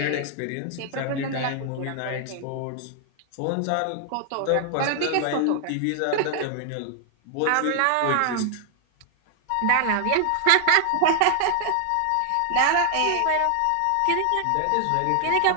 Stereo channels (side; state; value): both; different; correlation 0.00